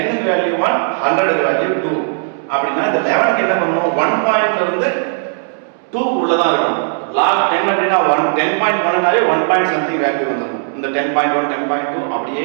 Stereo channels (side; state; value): left; silent; digital silence